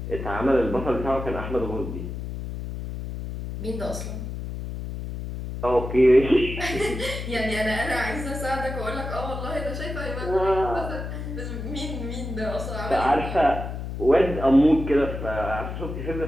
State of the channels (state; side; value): noise; left; hum, 6 dB below the sound